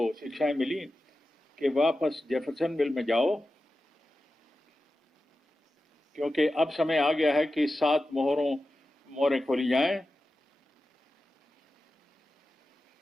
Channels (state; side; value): normal; both; correlation 0.93